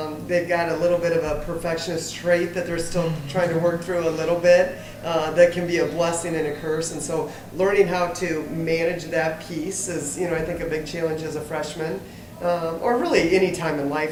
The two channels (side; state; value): both; identical; correlation 1.00